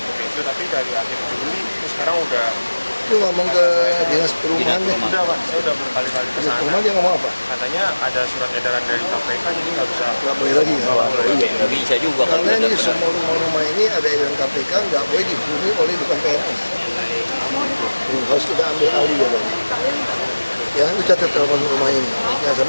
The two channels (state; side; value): inverted; both; correlation -1.00